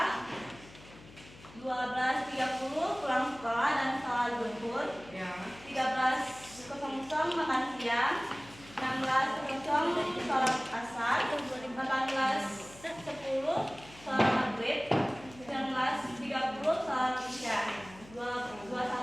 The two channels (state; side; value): noise; left; hum, 20 dB below the sound